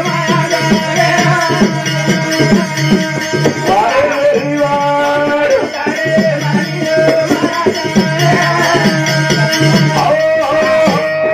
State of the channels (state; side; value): identical; both; correlation 1.00